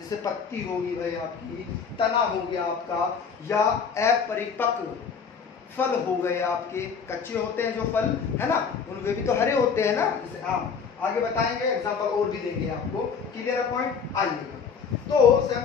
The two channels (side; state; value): right; quieter; 6.1 dB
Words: पत्ती होगी भाई आपकी, तना हो गया आपका, या अपरिपक्व फल हो गए आपके, कच्चे होते हैं जो फल है ना, उनमें भी तो हरे होते हैं ना, जैसे आम। आगे बताएंगे, एग्जांपल और भी देंगे आपको। Clear point? आइएगा। तो